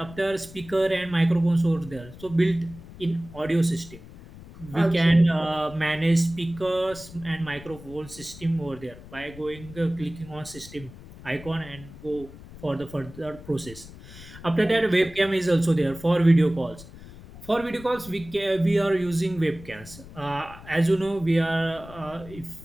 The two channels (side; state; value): left; noise; rumble, 17 dB below the sound